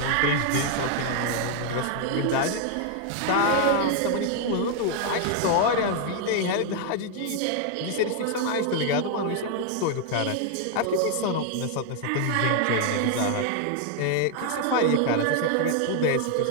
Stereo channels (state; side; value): different; both; correlation 0.00